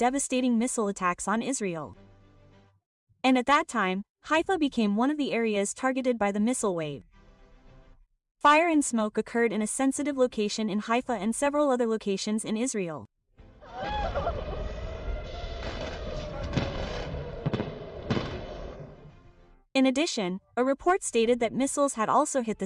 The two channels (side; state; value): both; identical; correlation 1.00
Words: missile attacks on Israel. And at that time, Haifa became one of the areas targeted by the missile wave. Fire and smoke occurred in a sensitive location in Haifa and several other locations in Israel. In addition, a report stated that missiles had also hit the